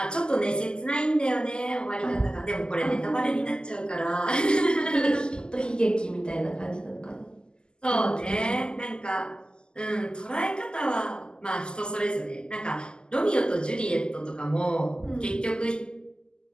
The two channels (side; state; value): right; late; 0.047 ms